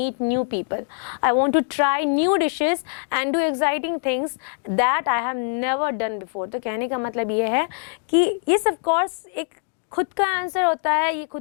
new people. I want to try new dishes and do exciting things that I have never done before. तो कहने का मतलब ये है कि ये of course एक खुद का आंसर होता है, ये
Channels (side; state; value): right; silent; digital silence